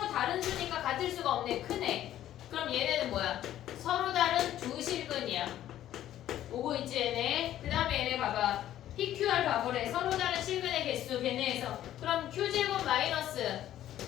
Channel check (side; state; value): right; quieter; 12.4 dB